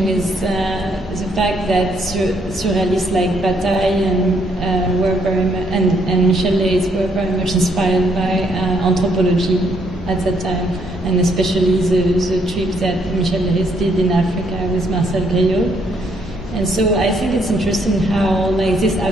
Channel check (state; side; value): normal; both; correlation 0.71